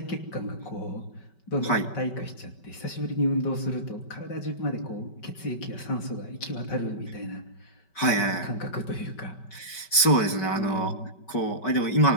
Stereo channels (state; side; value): late; right; 5.2 ms